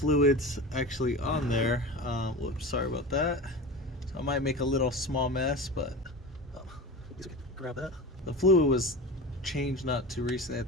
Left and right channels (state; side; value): normal; both; correlation 0.30